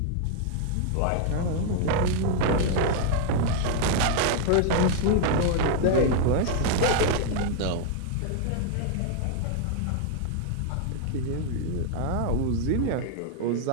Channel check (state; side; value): different; both; correlation 0.00